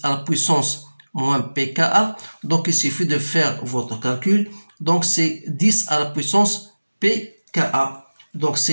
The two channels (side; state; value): both; inverted; correlation -1.00